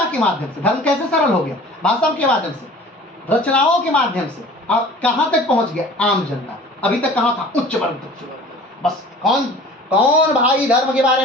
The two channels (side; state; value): both; normal; correlation 0.45